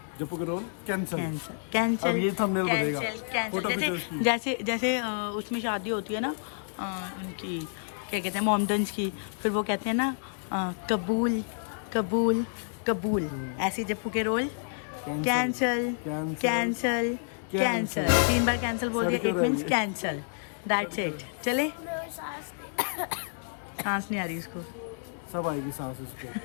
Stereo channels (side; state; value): right; silent; digital silence